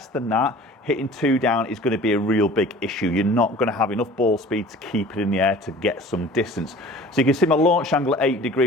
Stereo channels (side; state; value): both; normal; correlation 0.44